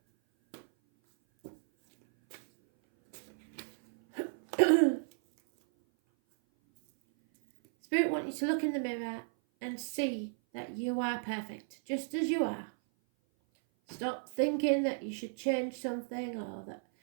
Spirit wants you to look in the mirror and see that you are perfect, just as you are. Stop thinking that you should change something, or that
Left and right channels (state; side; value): silent; left; 55 dB below the other